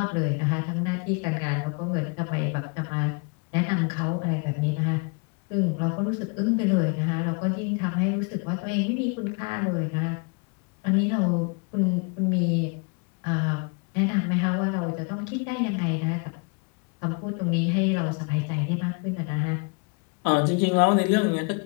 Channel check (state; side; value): quieter; right; 34.7 dB